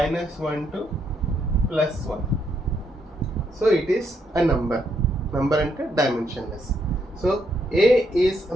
to +1. So it is a number ante dimensionless. So A is a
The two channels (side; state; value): both; normal; correlation 0.75